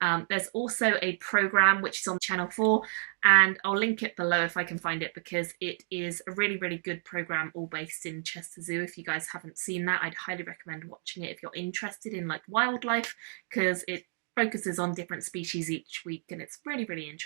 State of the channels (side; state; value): left; silent; digital silence